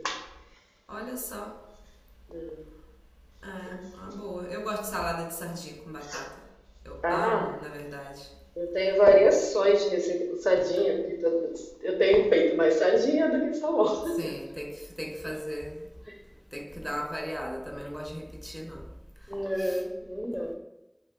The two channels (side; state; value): both; identical; correlation 1.00